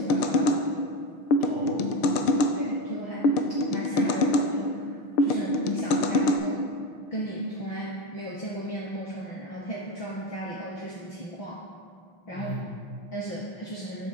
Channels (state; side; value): late; right; 6.6 ms